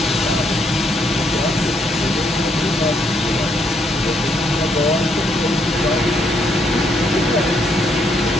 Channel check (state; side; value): normal; both; correlation 0.74